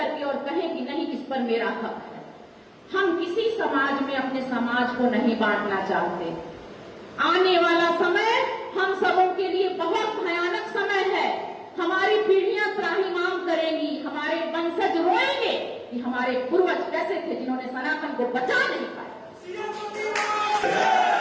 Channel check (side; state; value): both; identical; correlation 1.00